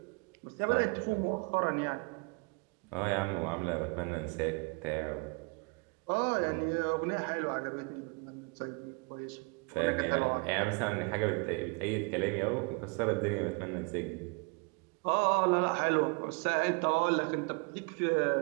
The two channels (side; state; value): left; quieter; 32.9 dB